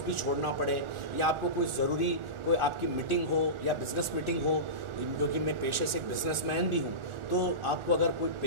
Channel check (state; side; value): late; left; 1.4 ms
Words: भी छोड़ना पड़े, या आपको कोई ज़रूरी कोई आपकी मीटिंग हो या बिज़नेस मीटिंग हो, क्योंकि मैं पेशे से एक बिज़नेसमैन भी हूँ, तो आपको अगर